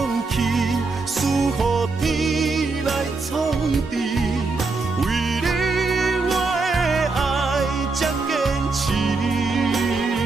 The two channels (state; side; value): quieter; left; 3.9 dB